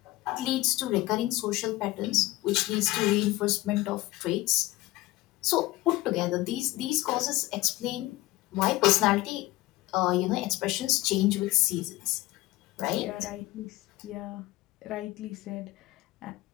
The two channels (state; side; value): quieter; right; 18.9 dB